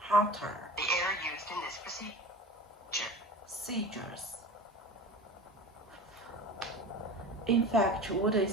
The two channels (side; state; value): both; normal; correlation 0.35